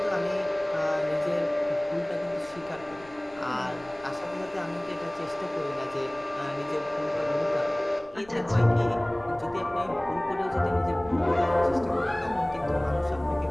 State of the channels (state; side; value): noise; left; rumble, 25 dB below the sound